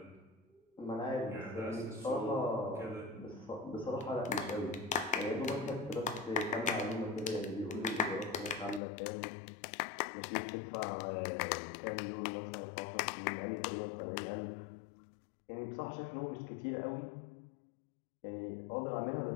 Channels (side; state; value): right; drops out; at 8.8 s